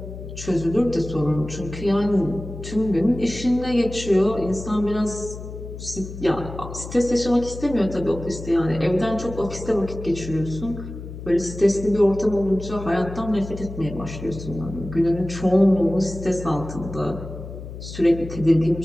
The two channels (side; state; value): left; noise; hum, 11 dB below the sound